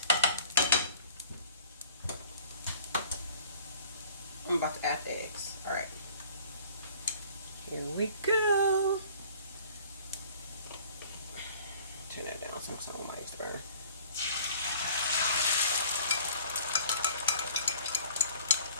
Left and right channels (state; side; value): inverted; both; correlation -0.50